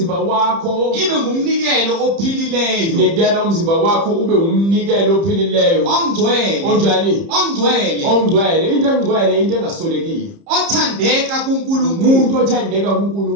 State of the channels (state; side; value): late; left; 30 ms